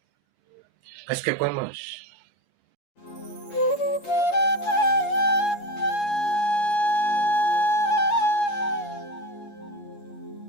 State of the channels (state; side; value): late; right; 8.4 ms